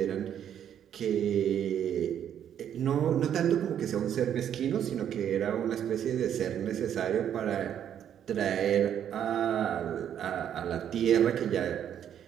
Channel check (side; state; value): left; quieter; 9.6 dB